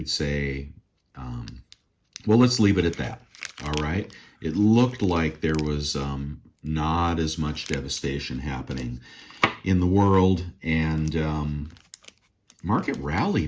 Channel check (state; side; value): identical; both; correlation 1.00